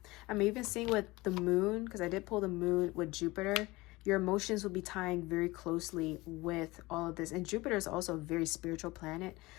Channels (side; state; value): right; quieter; 21.4 dB